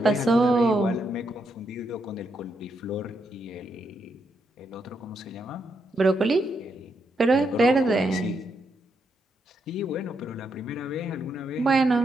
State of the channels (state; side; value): normal; both; correlation 0.80